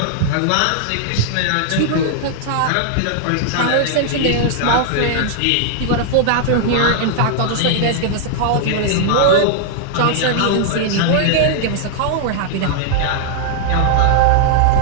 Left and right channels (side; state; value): both; different; correlation -0.01